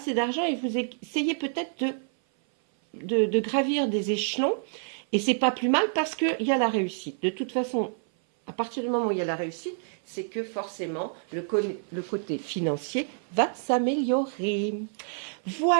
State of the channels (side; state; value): left; silent; 57 dB below the other